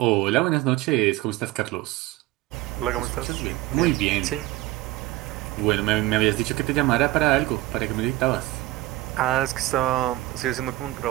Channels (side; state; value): left; quieter; 17.8 dB